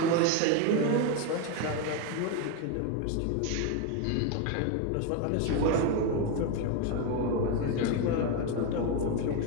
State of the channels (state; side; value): different; both; correlation 0.02